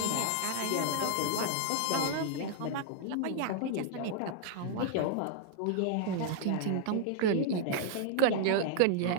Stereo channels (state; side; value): different; both; correlation -0.01